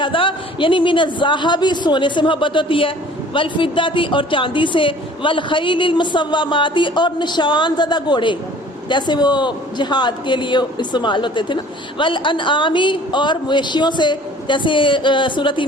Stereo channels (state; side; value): normal; both; correlation 0.50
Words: یعنی من الذہب سونے سے محبت ہوتی ہے، والفدتی اور چاندی سے، والخیل المسوماتی اور نشان زدہ گھوڑے جیسے وہ جہاد کے لیے استعمال ہوتے تھے نا، والانعامی اور مویشیوں سے، جیسے سورۃ